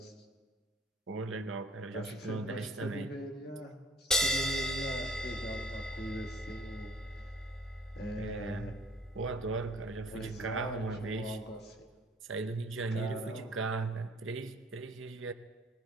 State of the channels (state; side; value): normal; both; correlation 0.55